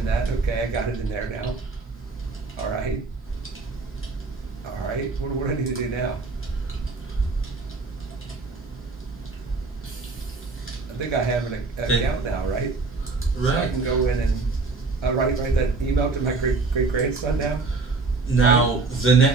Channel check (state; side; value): quieter; left; 3.8 dB